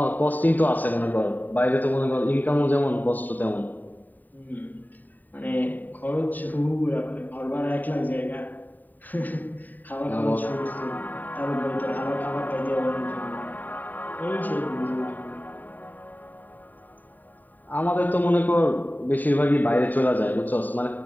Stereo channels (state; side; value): late; right; 0.087 ms